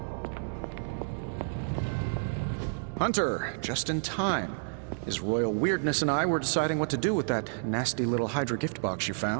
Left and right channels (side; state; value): left; silent; digital silence